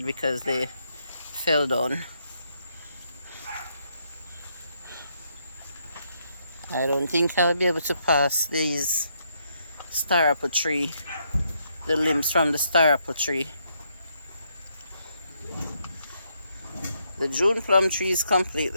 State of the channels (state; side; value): inverted; both; correlation -0.76